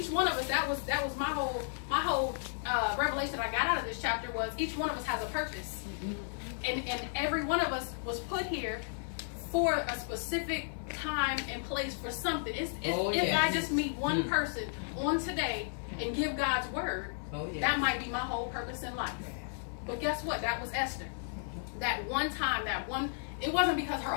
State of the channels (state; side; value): silent; right; digital silence